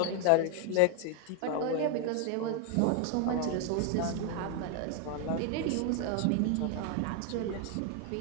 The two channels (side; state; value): both; different; correlation 0.00